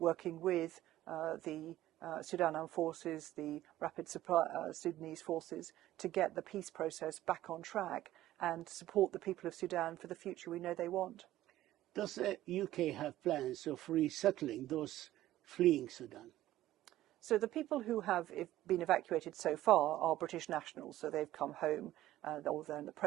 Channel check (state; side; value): quieter; left; 14.5 dB